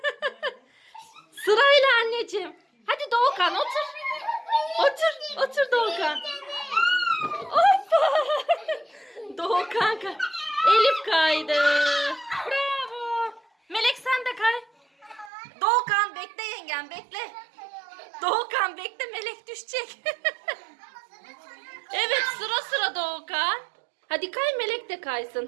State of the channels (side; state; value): left; drops out; at 15.3 s